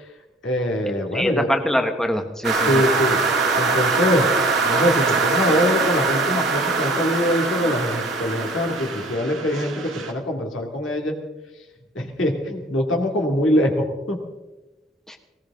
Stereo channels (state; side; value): normal; both; correlation 0.51